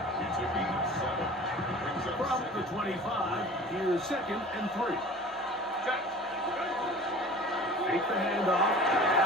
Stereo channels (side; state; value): both; normal; correlation 0.42